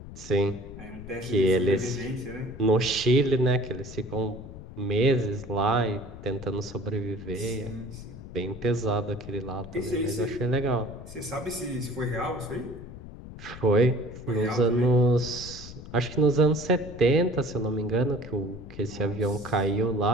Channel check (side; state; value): left; noise; rumble, 14 dB below the sound